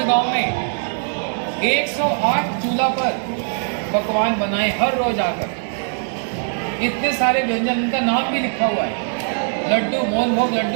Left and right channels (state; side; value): silent; left; 65 dB below the other